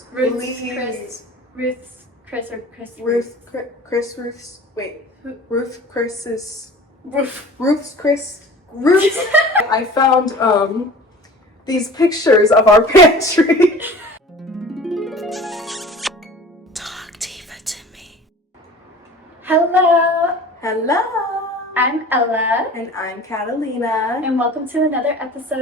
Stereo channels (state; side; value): normal; both; correlation 0.42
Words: Ruth's Ruth's. I found these pictures of our pantry. Talk Diva to me. Hello, Hello. I'm Ella. And I'm Catalina. And welcome to another